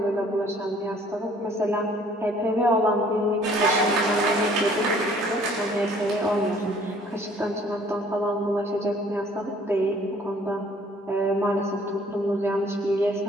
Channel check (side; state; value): both; normal; correlation 0.57